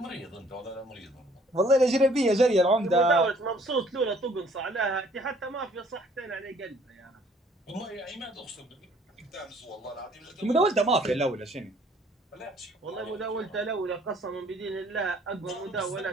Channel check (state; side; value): normal; both; correlation 0.59